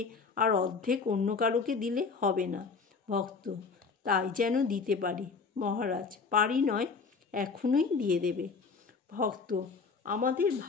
আর অর্ধেক অন্য কারোকে দিলে হবে না। ভক্ত: তাই যেন দিতে পারি। মহারাজ: পারি নয়, এখনই দিয়ে দেবে। ভক্ত: আমাদের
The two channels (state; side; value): quieter; right; 4.9 dB